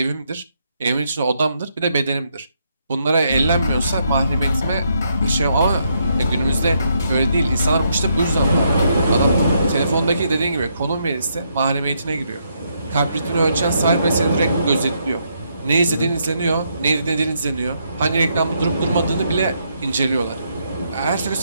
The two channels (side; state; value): both; inverted; correlation -0.76